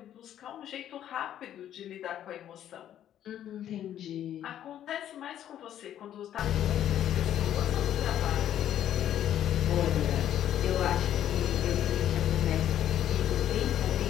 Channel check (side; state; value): right; quieter; 11.0 dB